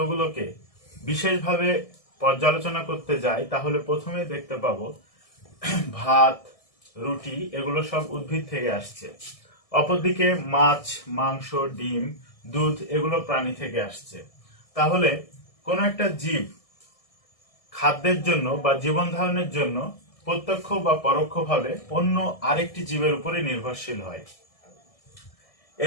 বিশেষভাবে পর্যালোচনা করতে যাই, তাহলে প্রথমেই দেখতে পাবো ভাত, রুটি এগুলো সব উদ্ভিদ থেকে আসছে। অপরদিকে মাছ, মাংস, ডিম, দুধ এগুলো প্রাণী থেকে আসছে। তাহলে কোনো একটা জীব খাদ্যের জন্য বা জীবন ধারণের জন্য প্রত্যক্ষ বা পরোক্ষভাবে অন্য আরেকটি জীবের উপরে নির্ভরশীল হয়।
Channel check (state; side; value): late; right; 1.6 ms